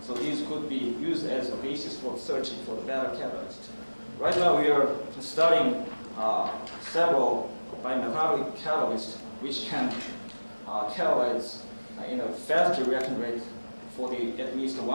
so these could be used as a basis for searching for the better catalyst. Right now we are studying several bimetallic catalysts which can catalyze in a faster reaction rate for at least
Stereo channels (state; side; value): inverted; both; correlation -1.00